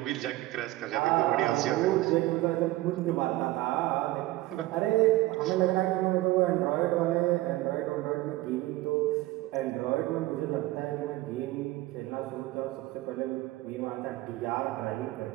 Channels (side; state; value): left; quieter; 17.6 dB